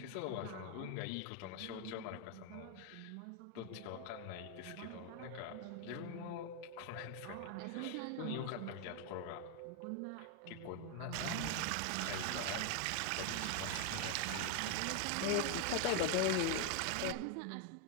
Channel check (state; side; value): different; both; correlation 0.01